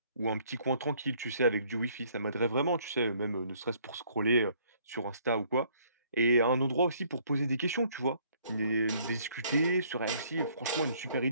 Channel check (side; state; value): both; inverted; correlation -0.63